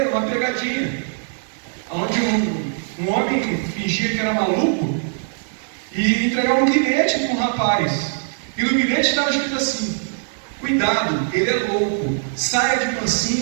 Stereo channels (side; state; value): left; silent; digital silence